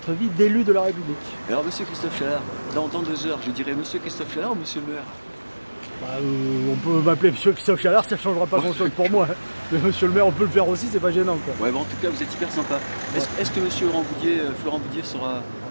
vie d'élu de la République. Alors, monsieur Christophe Chalard, dans 2 heures, je dirais monsieur Christophe Chalard ou monsieur le maire? Bah, on peut m'appeler monsieur Christophe Chalard, ça ne changera pas grand-chose pour moi. Mais monsieur le maire, on peut le faire aussi, c'est pas gênant, quoi. Ouais, bon, en tout cas, vous êtes hyper sympa. Est-ce que monsieur Florent Boudier sera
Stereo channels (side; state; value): both; inverted; correlation -1.00